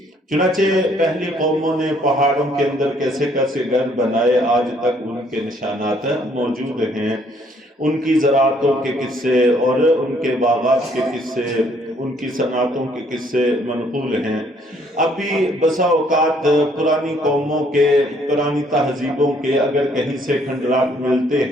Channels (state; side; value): normal; both; correlation 0.65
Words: چنانچہ پہلی قوموں نے پہاڑوں کے اندر کیسے کیسے گھر بنائے، آج تک ان کے نشانات موجود ہیں. ان کی زراعتوں کے قصے اور ان کے باغات کے قصے، ان کی صنعتوں کے قصے منقول ہیں. ابھی بسا اوقات پرانی قوموں کے، پرانی تہذیبوں کے اگر کہیں سے کھنڈرات ملتے